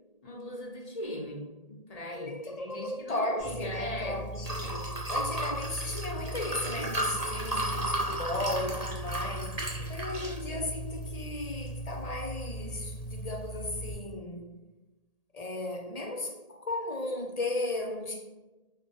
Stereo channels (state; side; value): late; right; 1.8 ms